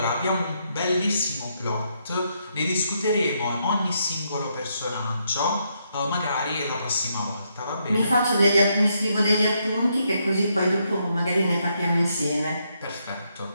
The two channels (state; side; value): inverted; both; correlation -0.77